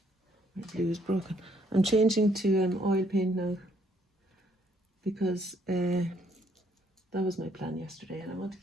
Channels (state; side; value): normal; both; correlation 0.68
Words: my blue is broken, I'm changing to oil paint now because that was my plan yesterday, and I want to